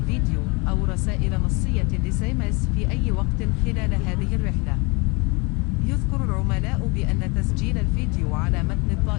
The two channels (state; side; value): quieter; right; 28.3 dB